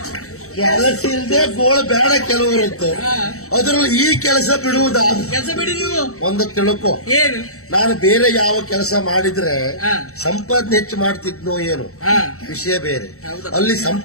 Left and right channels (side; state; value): right; late; 0.64 ms